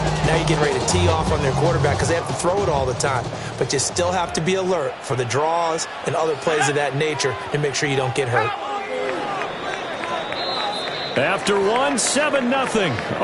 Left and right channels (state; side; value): identical; both; correlation 1.00